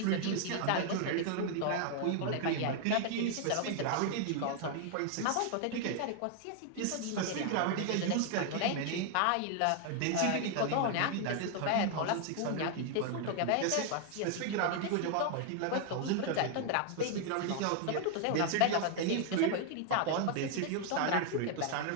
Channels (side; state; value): both; different; correlation 0.00